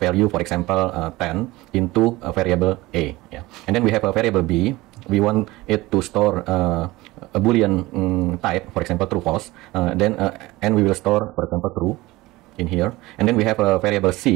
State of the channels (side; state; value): left; quieter; 19.8 dB